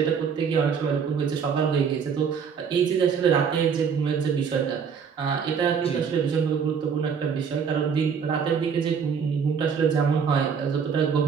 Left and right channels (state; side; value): quieter; left; 6.6 dB